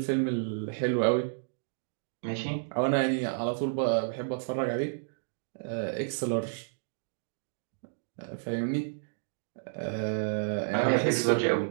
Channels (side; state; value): left; silent; digital silence